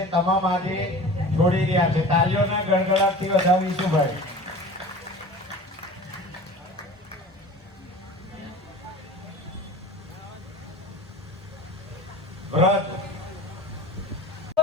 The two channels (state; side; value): normal; both; correlation 0.38